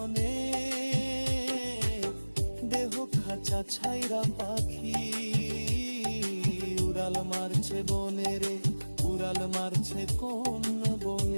দেহ খাঁচা ছাইরা পাখি উড়াল মারছে বনে রে, উড়াল মারছে কোন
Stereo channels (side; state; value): both; inverted; correlation -1.00